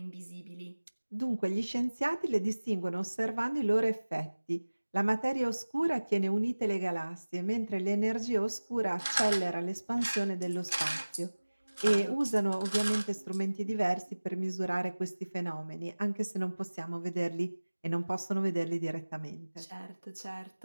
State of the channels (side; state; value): both; inverted; correlation -1.00